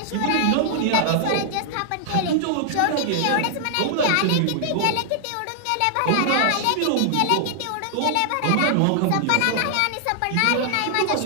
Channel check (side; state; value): both; different; correlation -0.01